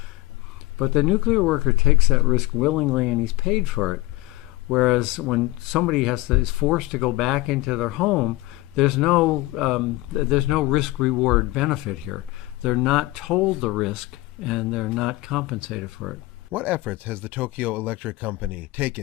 but the nuclear worker takes that risk willingly and he's paid for it. Whereas when somebody is forced to go back into their home, there's no risk-reward benefit here. They're not told the risk and they're not compensated for it. What efforts has the Tokyo Electric Company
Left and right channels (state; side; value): quieter; right; 19.5 dB